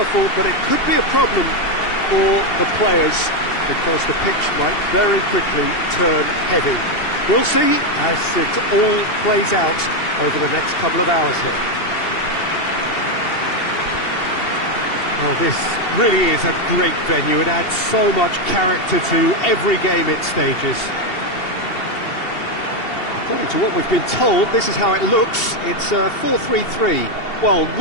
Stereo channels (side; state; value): right; late; 2.7 ms